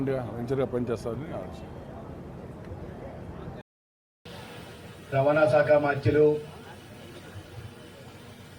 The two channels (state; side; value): identical; both; correlation 1.00